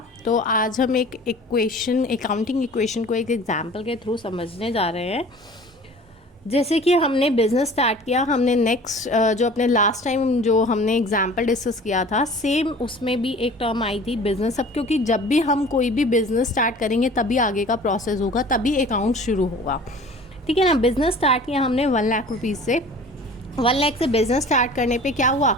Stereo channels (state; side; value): normal; both; correlation 0.45